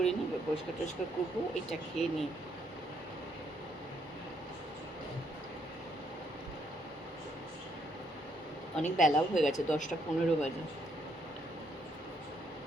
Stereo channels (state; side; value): normal; both; correlation 0.72